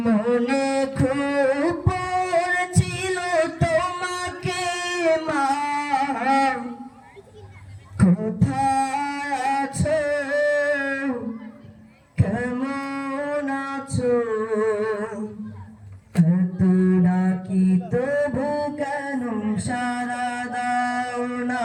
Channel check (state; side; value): identical; both; correlation 1.00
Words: মনে খুব পড়ছিল তোমাকে মা, কোথায় আছো, কেমন আছো, এত ডাকি তবু কেন সাড়া দাও না,